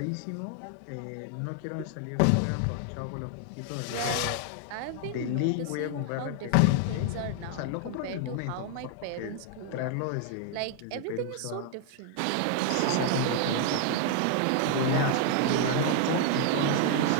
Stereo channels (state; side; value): different; both; correlation 0.00